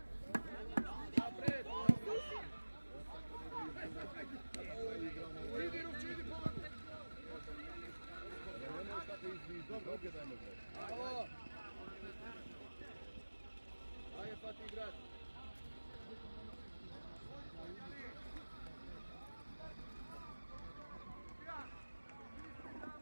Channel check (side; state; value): both; inverted; correlation -1.00